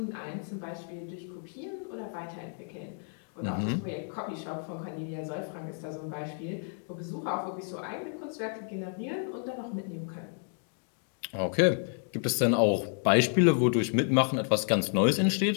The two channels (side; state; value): right; silent; 57 dB below the other